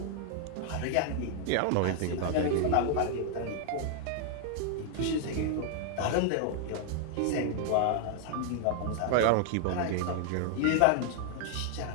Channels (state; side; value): different; both; correlation 0.00